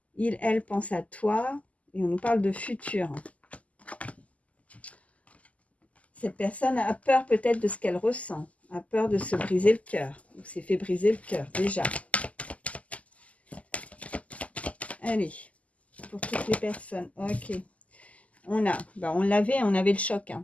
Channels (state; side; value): late; right; 0.069 ms